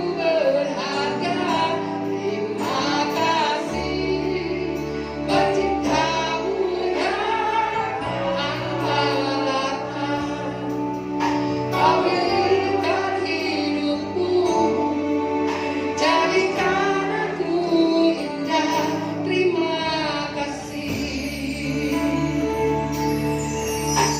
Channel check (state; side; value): identical; both; correlation 1.00